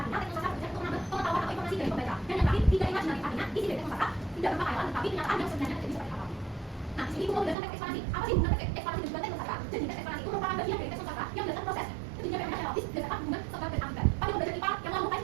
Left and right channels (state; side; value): drops out; left; at 7.6 s